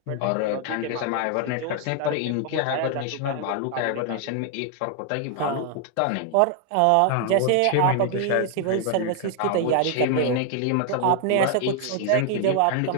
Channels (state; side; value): different; both; correlation 0.00